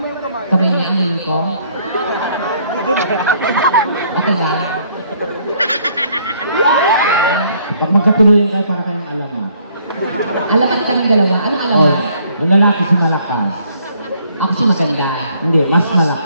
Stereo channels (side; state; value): both; inverted; correlation -0.64